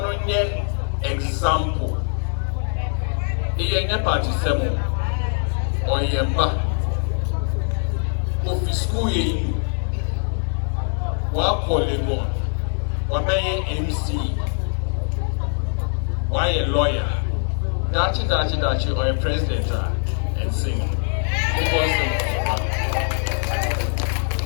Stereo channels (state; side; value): silent; right; 64 dB below the other